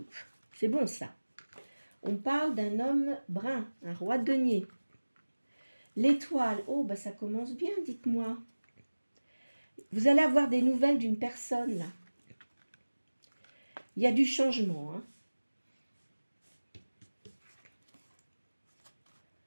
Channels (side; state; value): both; inverted; correlation -1.00